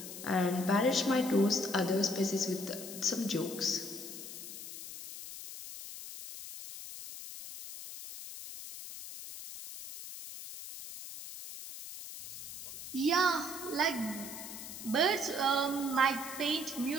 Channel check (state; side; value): noise; left; hiss, 10 dB below the sound